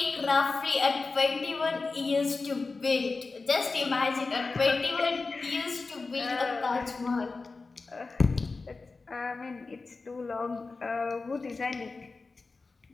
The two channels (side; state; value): right; quieter; 4.0 dB